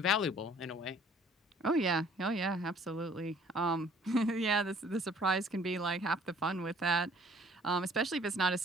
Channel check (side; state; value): both; normal; correlation 0.56